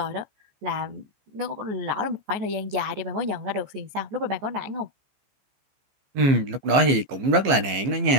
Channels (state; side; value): late; left; 15 ms